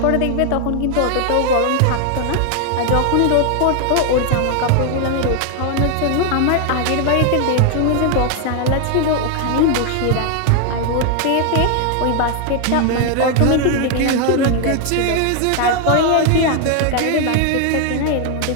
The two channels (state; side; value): different; both; correlation 0.00